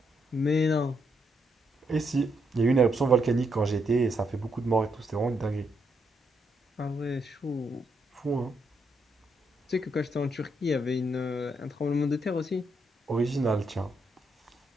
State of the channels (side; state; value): both; normal; correlation 0.78